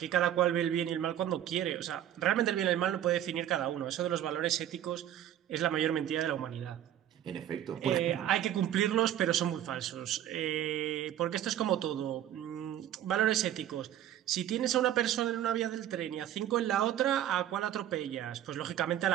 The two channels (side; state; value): left; quieter; 11.4 dB